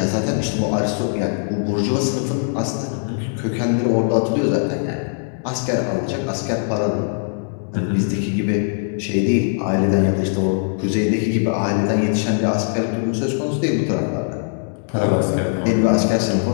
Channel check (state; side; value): silent; right; digital silence